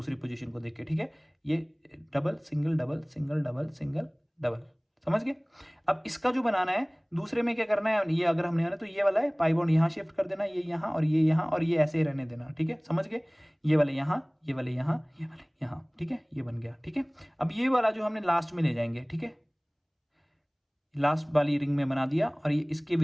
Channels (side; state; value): both; identical; correlation 1.00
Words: पोजीशन को देख के, ठीक है। ये double single double single double single double, समझ गए। अब इसका जो बनाना है दूसरे में क्या करना है, ये अगर हमने तो ये वाला है पाई बॉन्ड यहाँ शिफ्ट कर देना, ये यहाँ और ये यहाँ, और ये ऐसे ही रहने देना, ठीक है, समझ गए। ये वाले यहाँ, ये वाले यहाँ, ये वाले यहाँ, ठीक है, ये बन गया, ठीक है। अब ये वाला जो हमने लास्ट में ले जाएंगे, ठीक है, लास्ट वाली रिंग में बना दिया, और ये इसके